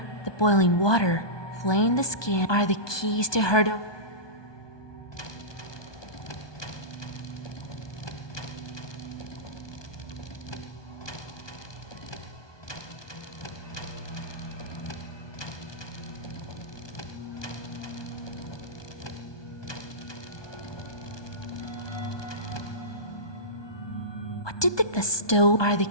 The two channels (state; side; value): late; right; 1.2 ms